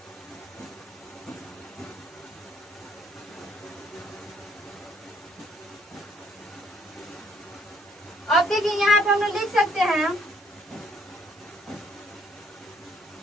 अब देखिए यहाँ पे हम लोग लिख सकते हैं,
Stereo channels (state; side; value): normal; both; correlation 0.66